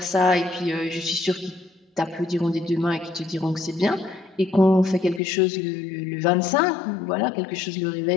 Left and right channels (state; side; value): drops out; right; at 5.2 s